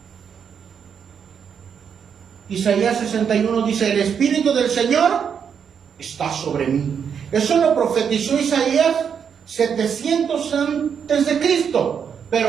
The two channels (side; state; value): left; quieter; 7.3 dB